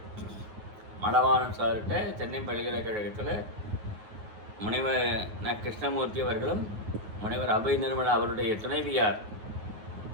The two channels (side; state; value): left; late; 9.4 ms